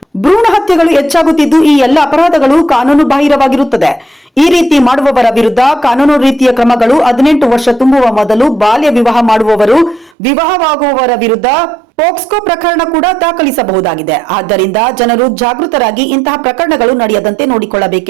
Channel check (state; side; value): drops out; left; at 10.1 s